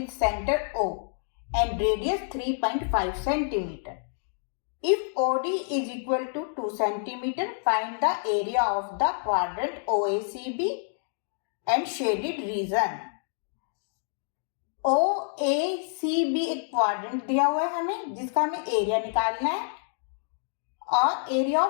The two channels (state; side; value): silent; right; digital silence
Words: centre O and radius 3.5 centimetre. If OD is equal to 2 centimeter, find the area of the quadrant OACB and shaded region. OACB एक quadrant दिया हुआ है हमें, जिसका हमें एरिया निकालना है और एरिया